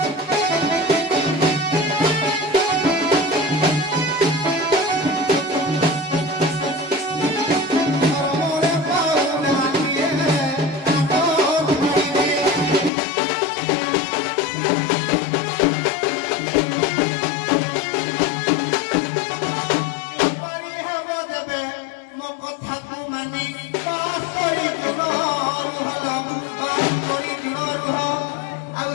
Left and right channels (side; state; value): right; drops out; at 12.9 s